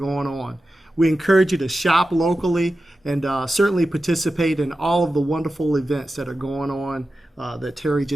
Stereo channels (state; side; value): normal; both; correlation 0.93